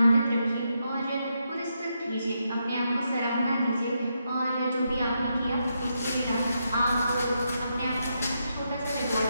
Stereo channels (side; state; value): both; inverted; correlation -0.82